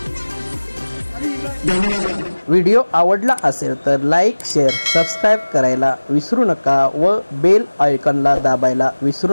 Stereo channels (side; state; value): both; inverted; correlation -1.00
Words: धन्यवाद व्हिडिओ आवडला असेल तर लाईक शेअर सबस्क्राईब करायला विसरू नका व बेल आयकॉनला दाबायला